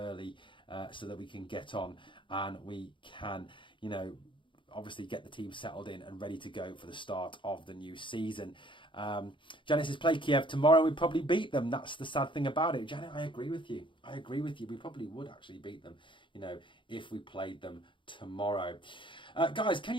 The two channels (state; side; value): late; right; 0.24 ms